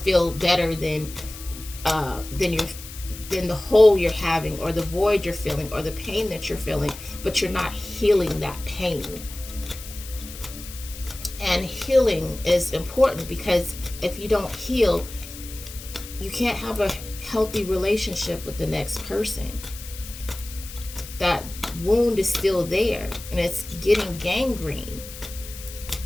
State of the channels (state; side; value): noise; left; hiss, 14 dB below the sound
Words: better than the hole you're having, or the void you're feeling, or the pain that you're feeling, but you're not healing that pain. And healing is important, because if you don't heal, you can't have a healthy relationship with the next person. That wound is still there, and it's getting gangrene.